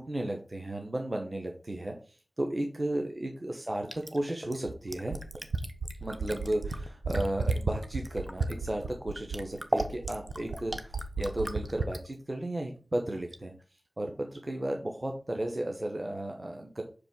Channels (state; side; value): normal; both; correlation 0.95